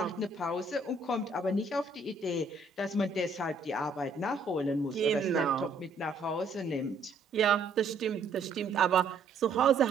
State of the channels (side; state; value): left; quieter; 3.5 dB